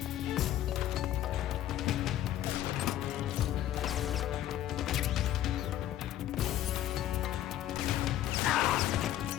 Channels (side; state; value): right; quieter; 12.6 dB